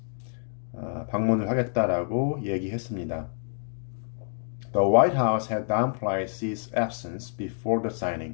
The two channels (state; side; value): silent; right; digital silence